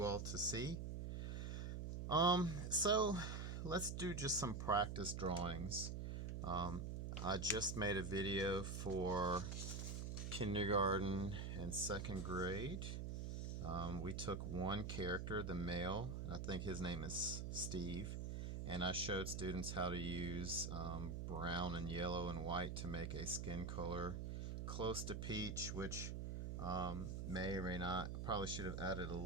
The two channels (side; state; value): right; noise; hum, 3 dB below the sound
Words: all to see. So let's do just some practice drawings. I just made a video for kindergarten and 2nd grade. We took one character, the male, I think his name is Steve, and I showed students how to use brown and yellow and white to make a skin color close to peach, which may or may not. Probably should have added a